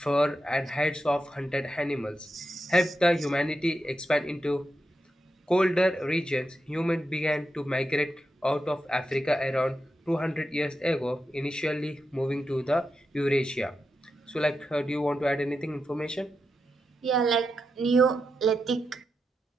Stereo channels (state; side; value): normal; both; correlation 0.87